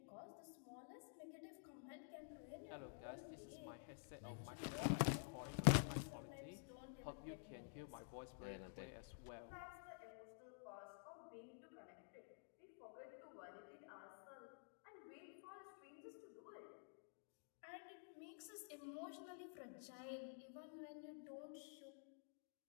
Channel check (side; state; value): right; silent; digital silence